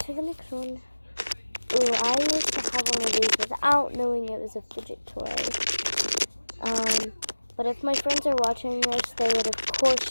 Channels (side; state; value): both; inverted; correlation -1.00